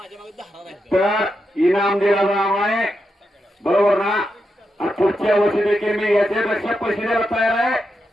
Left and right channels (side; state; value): both; normal; correlation 0.86